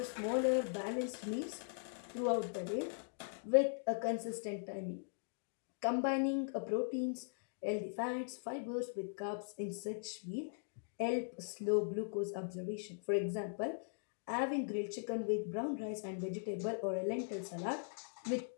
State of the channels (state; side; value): silent; right; digital silence